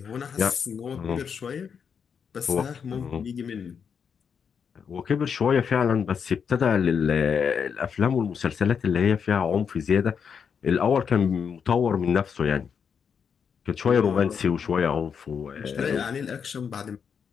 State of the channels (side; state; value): right; quieter; 6.8 dB